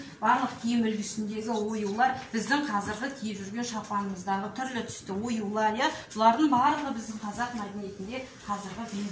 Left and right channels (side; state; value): both; identical; correlation 1.00